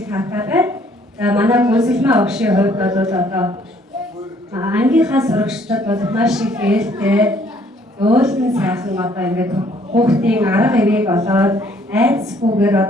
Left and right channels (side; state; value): both; normal; correlation 0.62